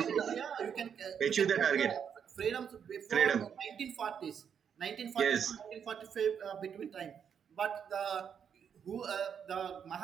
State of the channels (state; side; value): quieter; left; 7.6 dB